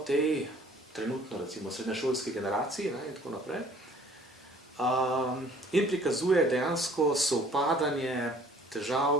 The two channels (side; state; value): both; normal; correlation 0.55